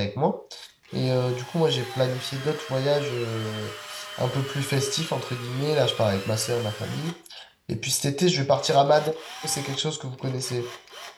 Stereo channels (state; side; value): identical; both; correlation 1.00